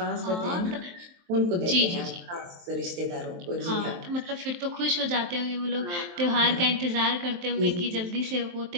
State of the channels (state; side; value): late; left; 23 ms